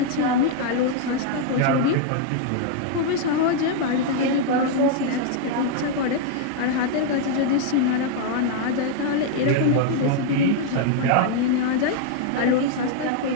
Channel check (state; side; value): different; both; correlation 0.00